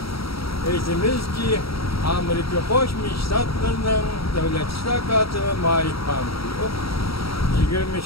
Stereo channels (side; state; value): right; late; 0.76 ms